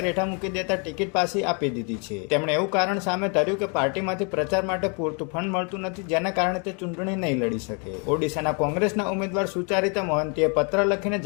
હેઠા મૂકી દેતા ટિકિટ પાછી આપી દીધી છે. તેમણે એવું કારણ સામે ધર્યું કે પાર્ટીમાંથી પ્રચાર માટે પૂરતું ફંડ મળતું નથી, જેના કારણે તે ચૂંટણી નહીં લડી શકે. ઓડિશાના કોંગ્રેસના ઉમેદવાર સુચરિતા મોહંતીએ પત્ર લખીને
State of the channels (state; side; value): quieter; right; 35.7 dB